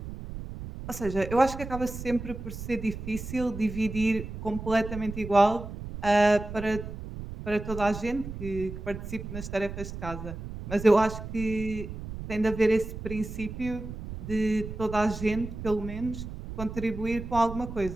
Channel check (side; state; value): right; noise; rumble, 9 dB below the sound